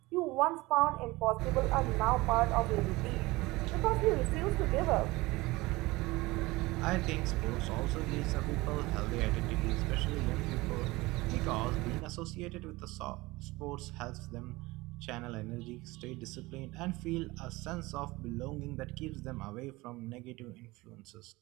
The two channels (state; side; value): quieter; left; 21.2 dB